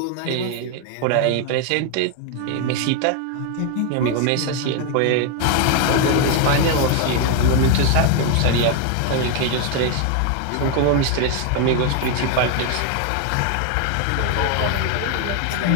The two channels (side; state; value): both; different; correlation 0.01